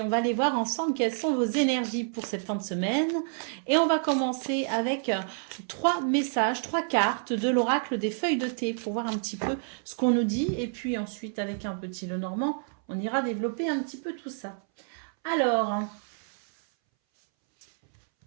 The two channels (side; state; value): left; silent; 59 dB below the other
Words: on va aller voir ensemble quelles sont vos énergies pour cette fin de semaine. Et on va commencer avec 3 messages, 3 cartes de l'oracle des feuilles de thé pour voir un petit peu ce qu'on nous dit. Et puis ensuite avec un petit Lenormand, on ira développer un petit peu tout ça. Alors,